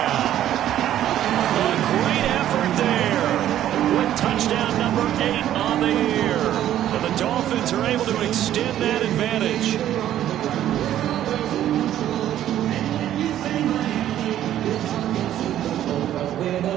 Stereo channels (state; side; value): quieter; left; 11.9 dB